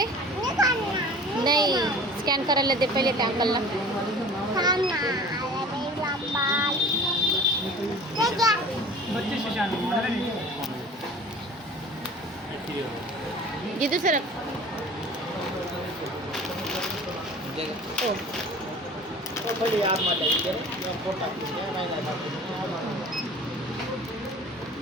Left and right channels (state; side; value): normal; both; correlation 0.43